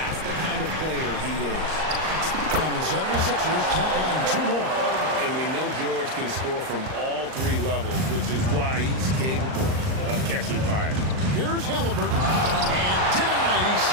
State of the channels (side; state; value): left; late; 38 ms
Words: the kind of player he is. And the 76ers tack on 2 more. And we know George can score from all 3 levels, which is why he's capable of catching fire. Here's Halliburton. And denied. He